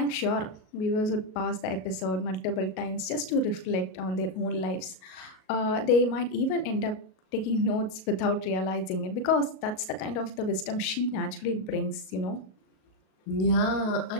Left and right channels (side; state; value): right; late; 37 ms